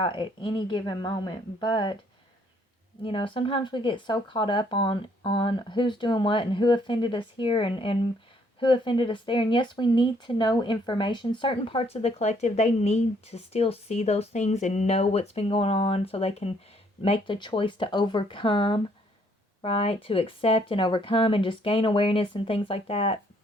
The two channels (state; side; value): normal; both; correlation 0.66